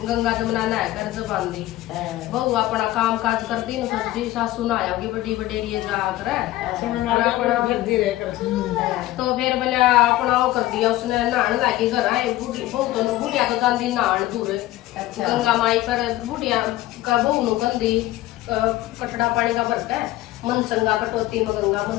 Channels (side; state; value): right; quieter; 16.2 dB